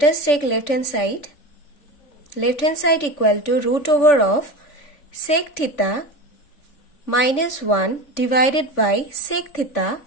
us take left hand side. Left hand side equal to root over of sec theta minus 1 divided by sec theta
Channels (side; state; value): right; late; 3.5 ms